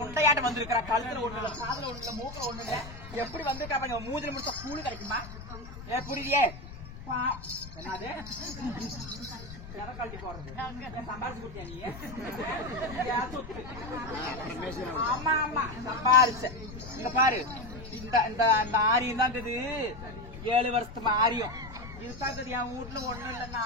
வந்திருக்கிறா கழுத்துல ஒண்ணு இல்ல காதுல ஒண்ணு இல்ல மூக்கில ஒண்ணு இல்ல எப்படி வந்திருக்கா மூதிரி முடிச்சா கூலி கிடைக்குமா புரியுதே என்னது கழட்டி போடுறது சம்பாரிச்சு கொடுத்தியா நீ ஆமா ஆமா சம்பாரிச்ச இங்க பாரு இந்த ஆரியம் தான் இது 7 வருஷத்து ஆரியம் இதுதான் என் வீட்டுல ஒண்ணும் இல்ல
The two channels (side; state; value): left; noise; rumble, 13 dB below the sound